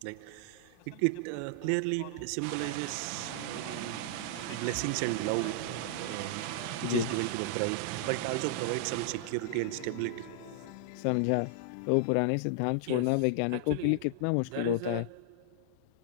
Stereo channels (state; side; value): different; both; correlation -0.01